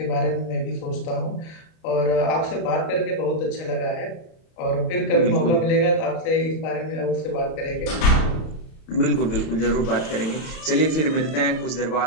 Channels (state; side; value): late; right; 31 ms